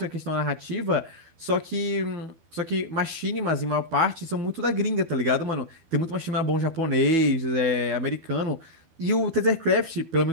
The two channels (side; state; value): left; late; 12 ms